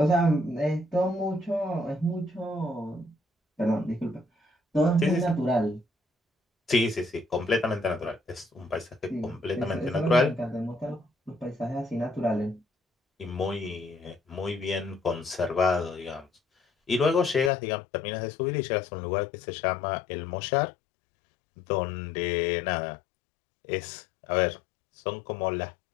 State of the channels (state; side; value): drops out; right; at 17.5 s